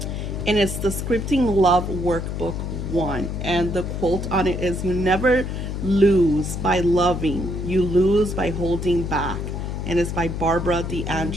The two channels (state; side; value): noise; left; hum, 4 dB below the sound